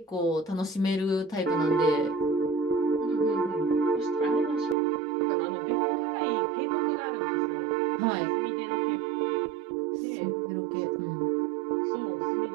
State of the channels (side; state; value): left; drops out; at 4.8 s